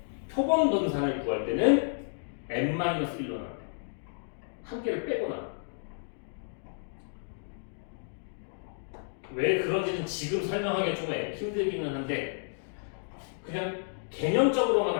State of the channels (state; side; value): silent; right; digital silence